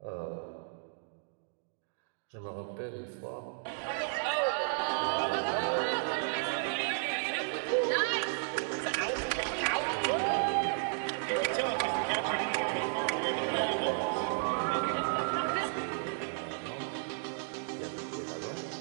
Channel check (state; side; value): silent; left; digital silence